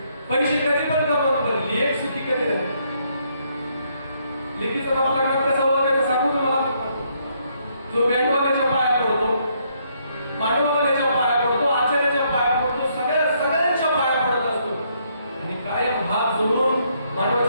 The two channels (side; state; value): both; inverted; correlation -0.72